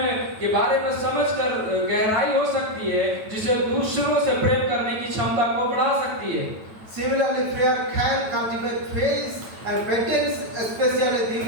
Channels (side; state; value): left; late; 9.1 ms